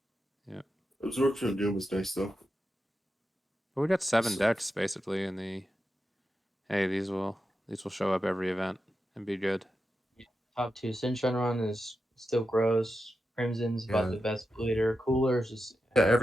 yeah, Absorption of Doom is nice though. but we got 7 So- decks basically in the. Hey, these will show up every event and be good. Top 2 Shenron is still gross. Crimson's about Yeah. the best bleeder. Cooler's just Yeah,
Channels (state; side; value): normal; both; correlation 0.89